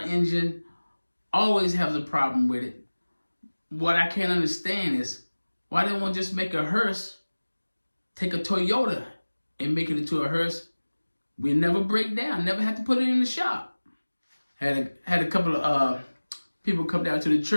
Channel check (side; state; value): both; inverted; correlation -1.00